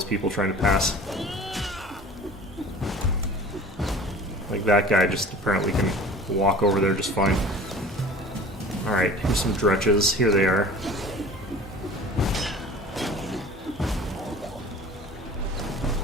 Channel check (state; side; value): normal; both; correlation 0.43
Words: people trying to pass. Like that guy just apparently can walk over there just fine. Alright, here's some dretches. Here they are.